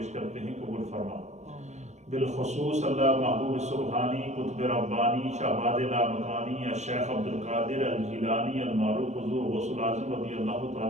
کرتے ہیں، قبول فرما۔ بالخصوص اللہ محبوب سبحانی، قطب ربانی، شہباز لامکانی، الشیخ عبدالقادر الجیلانی المعروف حضور غوث العظم رضی اللہ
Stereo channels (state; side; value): late; left; 0.34 ms